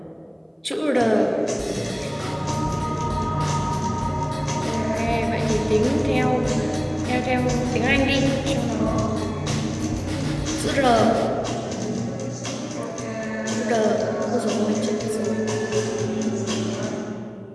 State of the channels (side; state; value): both; identical; correlation 1.00